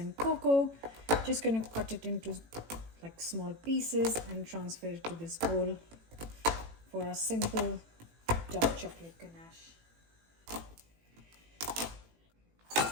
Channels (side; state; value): left; late; 18 ms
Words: cocoa. Just going to cut it into like small pieces and transfer it to this bowl for a simple dark chocolate ganache.